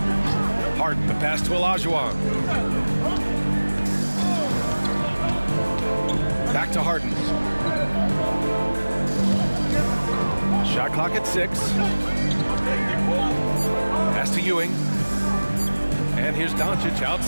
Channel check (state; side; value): inverted; both; correlation -1.00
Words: Harden, the pass to Olajuwon. Back to Harden. Shot clock at 6. Pass to Ewing. And here's Doncic